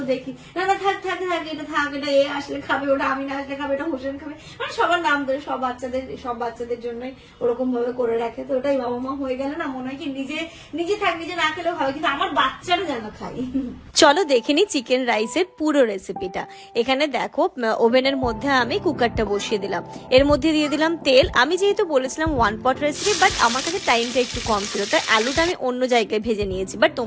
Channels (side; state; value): both; identical; correlation 1.00